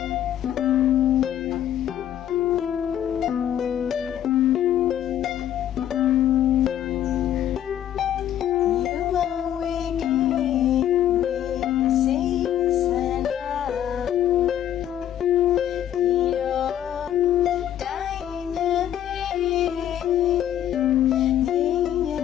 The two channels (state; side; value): quieter; right; 11.0 dB